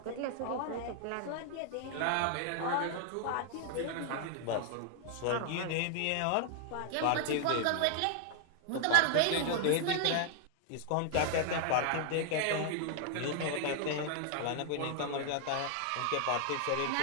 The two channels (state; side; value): different; both; correlation 0.00